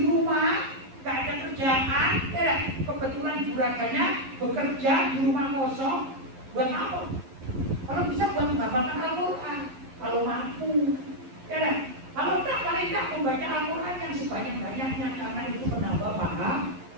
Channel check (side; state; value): left; late; 11 ms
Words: rumah nggak ada kerjaan, ya kebetulan juragannya bekerja di rumah kosong, buat apa? Kalau bisa buat menghafalkan Al-Quran, kalau mampu, ya kalau tak paling tak membaca Al-Quran yang sebanyak-banyaknya karena itu menambah paham.